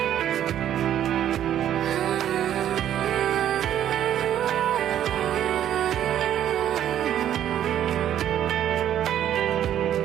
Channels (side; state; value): left; quieter; 10.9 dB